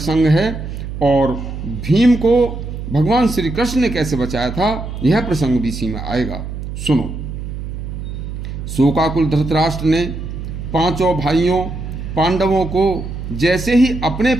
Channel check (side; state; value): right; noise; hum, 7 dB below the sound